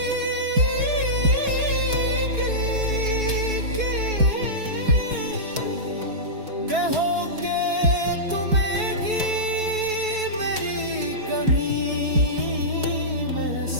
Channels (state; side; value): late; left; 4.6 ms